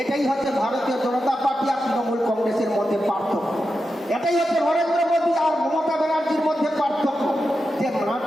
এটাই হচ্ছে ভারতীয় জনতা পার্টি আর তৃণমূল কংগ্রেসের মধ্যে পার্থক্য। এটাই হচ্ছে নরেন্দ্র মোদী আর মমতা ব্যানার্জির মধ্যে পার্থক্য, যে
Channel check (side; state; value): both; normal; correlation 0.89